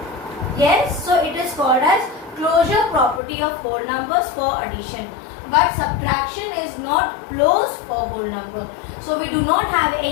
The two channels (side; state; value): right; drops out; at 3.2 s